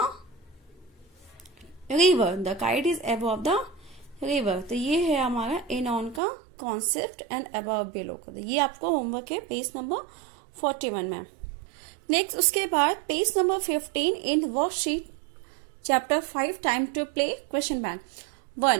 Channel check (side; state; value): left; drops out; at 6.2 s